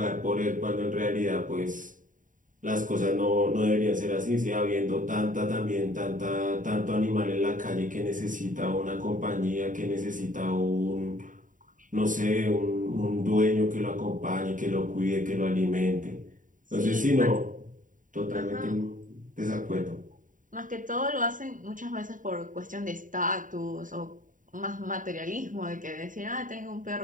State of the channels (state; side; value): late; left; 0.38 ms